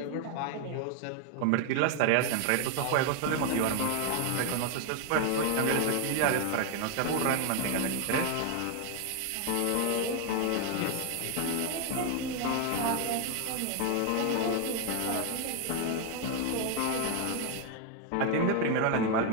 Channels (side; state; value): both; different; correlation 0.01